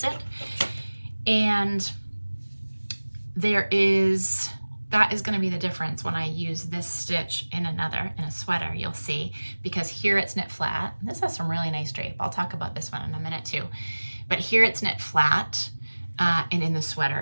it. And that is going to be the difference when I use this stitch in a sweater, you'll see, because here it's knit flat. This has some really nice drape. I'll talk about this one in a minute too. But here it's knit flat, and in the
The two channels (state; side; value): inverted; both; correlation -1.00